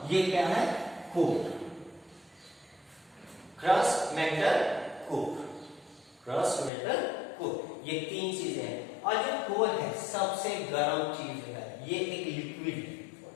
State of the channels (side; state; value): right; drops out; at 6.7 s